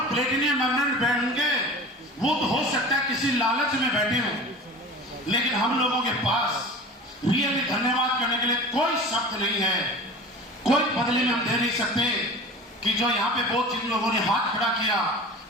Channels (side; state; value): both; normal; correlation 0.37